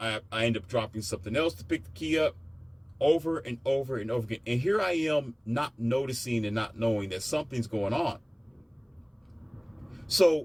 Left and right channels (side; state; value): both; identical; correlation 1.00